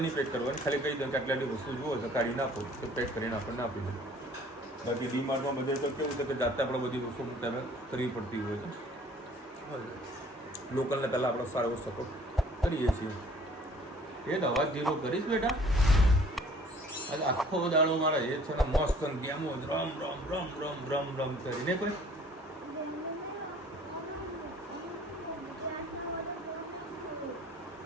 નહીં પેક કરવાની, ખાલી કહી દો કે આટલી વસ્તુ જુઓ છે કાઢી નાખો તો પેક કરીને આપણને આપી દો. બાકી ડીમાર્ટમાં બધે તો કેવું છે કે જાતે આપણે બધી વસ્તુ તમે કરવી પડતી હોય છે. લોકલને પહેલાં આપણે સારો એવો સપોર્ટ કરીએ છીએ. એ તો અવાજ ધીરો કરીશ બેટા. આજે આખો દાડો મારા એ છે ને મસ્ત ગેમો રમ રમ રમ રમ રમ રમ કરીને કોઈ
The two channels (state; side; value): normal; both; correlation 0.54